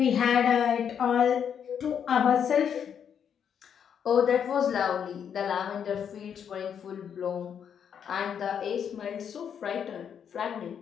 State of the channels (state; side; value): quieter; right; 8.0 dB